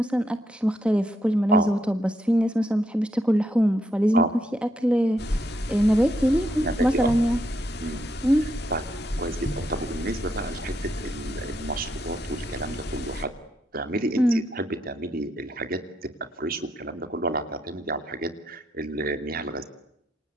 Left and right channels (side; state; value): both; normal; correlation 0.78